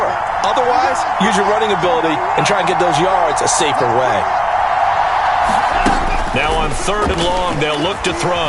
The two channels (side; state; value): both; identical; correlation 1.00